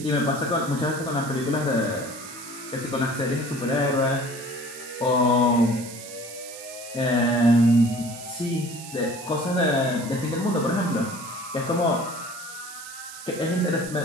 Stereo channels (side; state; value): right; noise; hiss, 13 dB below the sound